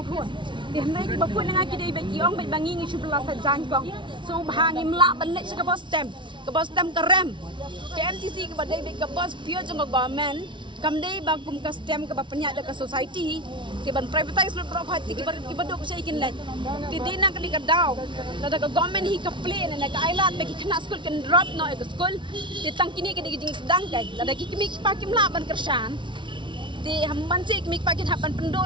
khon di hendai ki bapun yang ki de beki ong bai bangi ngi subla sa jangkong so bahangi mla banle ka bos tem ka rem ke MTC ka badai ka bos pio jong government kamdei bagum ka stem ka bapanya da ka society ke ban privatize lo property ki badok sa ikin let ti dina ka ka daw da ka government hi ka plane na ka island bagi kena school kan drop no ka school ti tang kini ka diging sedang kay da ki kimi pa kim laban kersan ti hamban si kimi pa kin haban pendo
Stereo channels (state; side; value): late; left; 0.24 ms